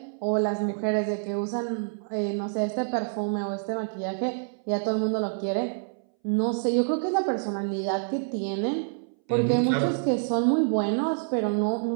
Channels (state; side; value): silent; left; 60 dB below the other